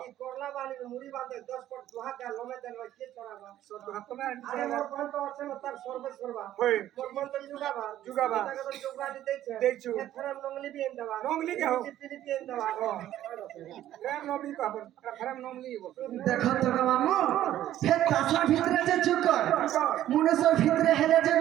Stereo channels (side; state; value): left; quieter; 12.7 dB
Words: এই করলা বালি মুড়ি বাঁধে 10 ফুট দুহা কা লমে দেন কে চড়াবা সব হাত না আরে মোর কোন তো আছে না তার সর্বে সর্বা মোর কোন তো জুগাবা তাকে তো জুগা দিতেছে দেখছো এখানে নংলি বিন দেবা নংলি কে हो देखो तो मामू हे कासर ভিতরে যে চুকর মুনসর ভিতরে হেলে যে